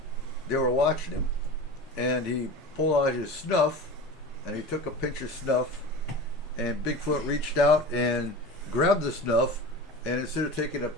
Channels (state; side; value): normal; both; correlation 0.32